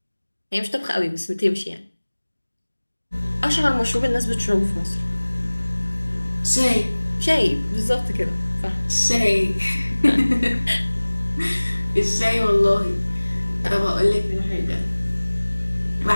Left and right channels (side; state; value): both; inverted; correlation -1.00